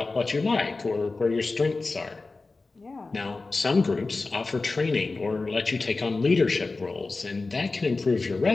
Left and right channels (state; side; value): quieter; right; 3.7 dB